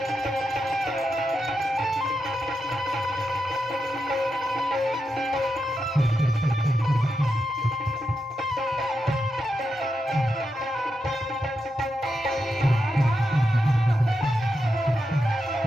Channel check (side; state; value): both; normal; correlation 0.86